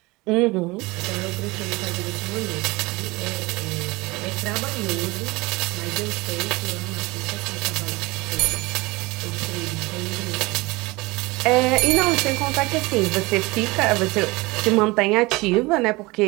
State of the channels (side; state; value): left; quieter; 23.1 dB